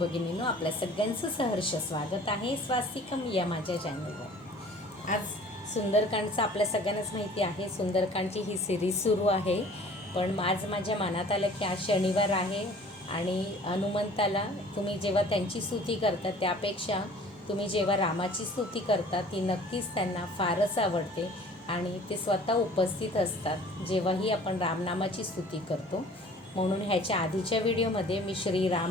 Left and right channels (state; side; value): normal; both; correlation 0.49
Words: आपल्या सगळ्यांचं सहर्ष स्वागत आहे स्वास्तिकम या माझ्या चॅनलवर। आज सुंदरकांडचं आपल्या सगळ्यांनाच माहिती आहे, सुंदरकांडची ही सिरीज सुरू आहे। पण आज माझ्या मनात आलं की आज शनिवार आहे आणि हनुमंताला तुम्ही जेव्हा त्यांची स्तुती करता त्यापेक्षा तुम्ही जेव्हा रामाची स्तुती करता ती नक्कीच त्यांना फारच आवडते आणि ते स्वतः उपस्थित असतात जेव्हाही आपण रामनामाची स्तुती करतो। म्हणून ह्याच्या आधीच्या व्हिडिओमध्ये मी श्री